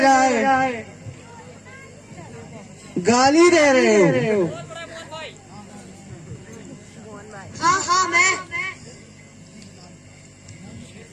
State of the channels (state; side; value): identical; both; correlation 1.00